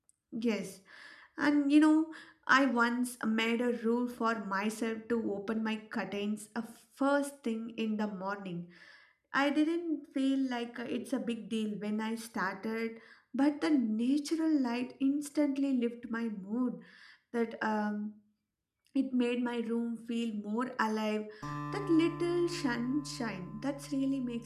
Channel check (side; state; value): both; identical; correlation 1.00